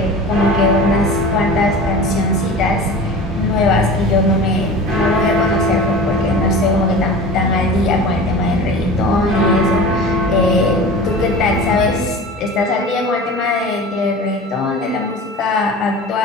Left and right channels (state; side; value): normal; both; correlation 0.36